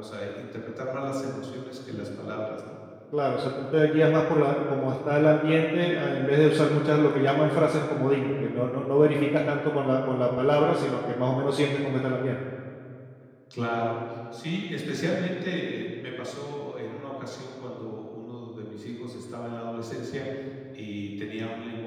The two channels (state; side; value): identical; both; correlation 1.00